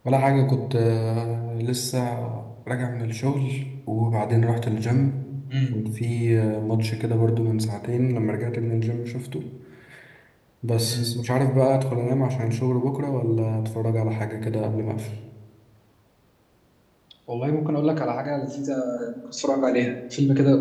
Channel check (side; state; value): both; identical; correlation 1.00